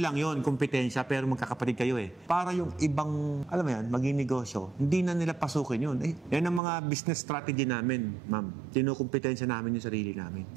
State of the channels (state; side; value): drops out; left; at 6.6 s